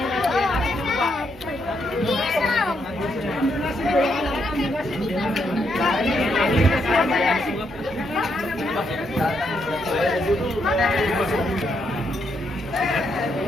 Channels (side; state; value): both; normal; correlation 0.77